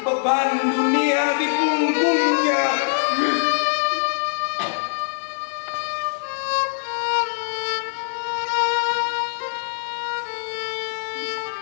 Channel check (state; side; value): silent; right; digital silence